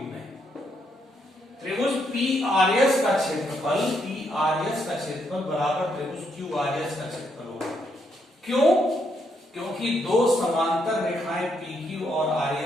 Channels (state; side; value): normal; both; correlation 0.76